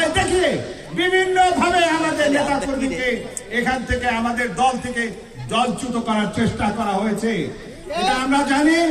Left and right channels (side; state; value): both; identical; correlation 1.00